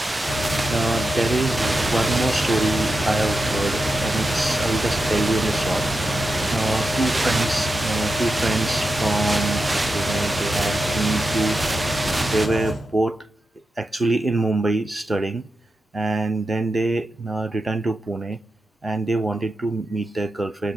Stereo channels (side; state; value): both; normal; correlation 0.89